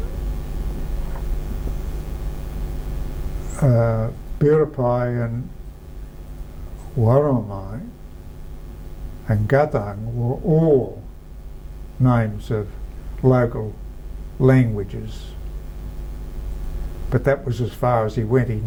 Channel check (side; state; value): both; identical; correlation 1.00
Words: Buripai and Warramai and Gathang were all names of local languages. But that was as far as he went. He